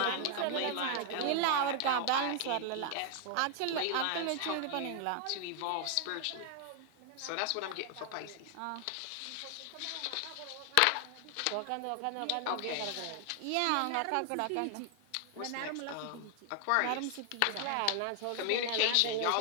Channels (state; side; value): different; both; correlation 0.00